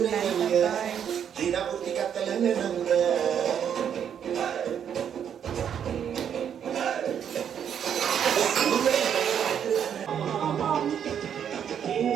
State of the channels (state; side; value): quieter; left; 8.5 dB